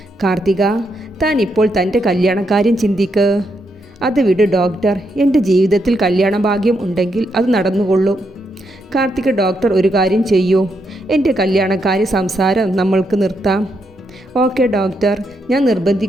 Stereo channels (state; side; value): normal; both; correlation 0.80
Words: കാർത്തിക, താൻ ഇപ്പോൾ തൻ്റെ കല്യാണക്കാര്യം ചിന്തിക്ക്. അത് വിട് ഡോക്ടർ. എൻ്റെ ജീവിതത്തിൽ കല്യാണ ഭാഗ്യം ഉണ്ടെങ്കിൽ അത് നടന്നുകൊള്ളും. കാർത്തിക, ഡോക്ടർ ഒരു കാര്യം ചെയ്യൂ. എൻ്റെ കല്യാണക്കാരി സംസാരം നമ്മൾക്ക് നിർത്താം. ഓക്കെ ഡോക്ടർ, ഞാൻ